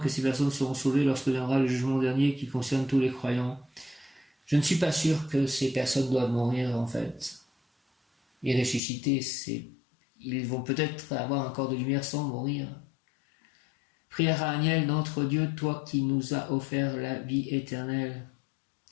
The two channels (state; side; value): drops out; right; at 8.8 s